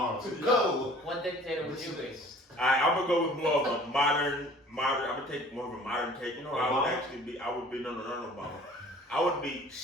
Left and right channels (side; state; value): both; normal; correlation 0.49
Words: Go! What dictator would you be? Alright, I'm gonna go with more of a modern. I'm gonna take more of a modern take. You know, I would Obama? actually be. I would be no Obama. I would be